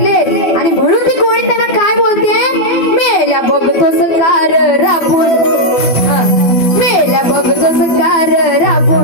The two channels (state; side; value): late; right; 12 ms